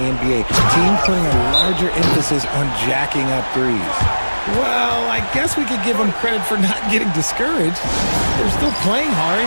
Teams putting a larger emphasis on jacking up threes. Well, I guess we could give him credit for not getting discouraged. They're still playing hard.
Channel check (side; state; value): both; inverted; correlation -1.00